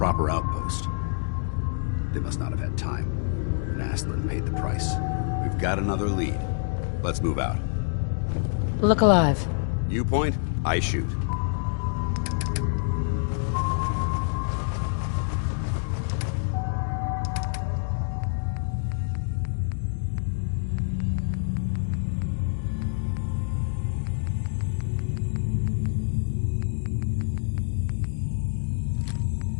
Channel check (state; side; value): silent; right; digital silence